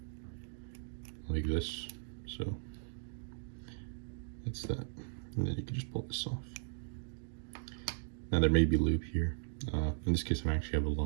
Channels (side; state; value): left; silent; digital silence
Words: like this. So that's that, and then you can just pull this off. Now there may be lube here. In this case I actually have a